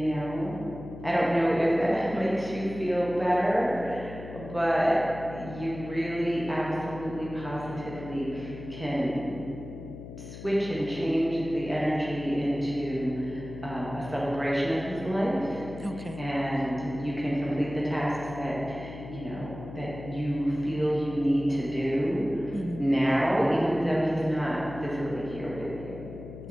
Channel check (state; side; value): noise; left; hum, 12 dB below the sound